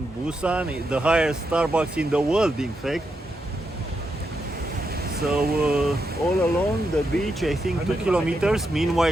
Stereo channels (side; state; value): both; normal; correlation 0.84